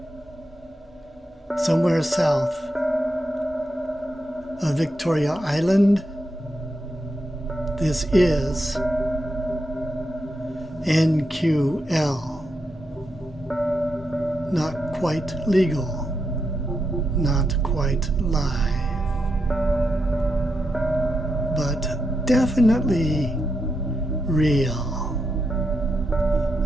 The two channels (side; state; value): both; normal; correlation 0.84